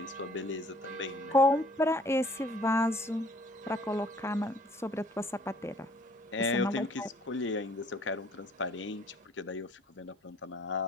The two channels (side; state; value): both; normal; correlation 0.57